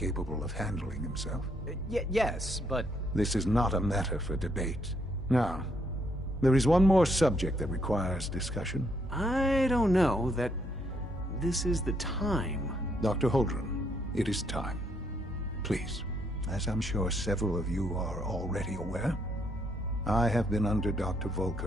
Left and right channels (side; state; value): both; normal; correlation 0.72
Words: of handling himself. Yes, but... This is not a matter for debate. Now, there is one more subject that requires discussion. I don't know that this is the time. Dr. Holdren, it is time. Please, as I'm sure several of you are already aware, I have been under Dr.